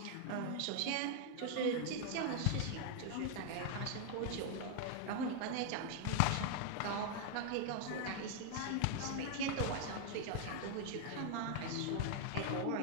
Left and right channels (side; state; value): both; different; correlation 0.00